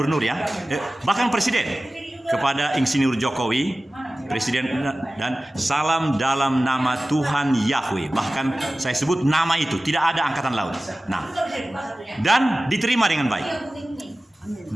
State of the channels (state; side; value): normal; both; correlation 0.96